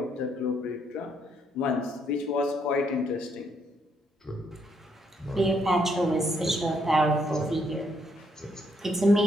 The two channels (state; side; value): normal; both; correlation 0.73